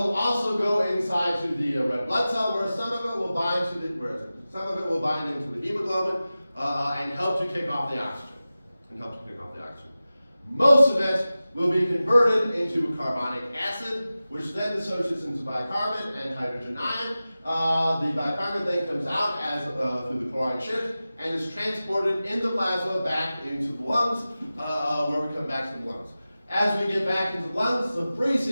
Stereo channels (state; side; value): inverted; both; correlation -0.96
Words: also go inside to the red blood cell, where some of it will bind to the into the hemoglobin and help to kick off the oxygen. Most of it will be converted into carbonic acid, which then dissociates into bicarbonate and hydrogen ion. The bicarbonate then comes out as through the chloride shift and is transported in the plasma back into the lungs, where we come back to the lungs. As we get back into the lungs, the free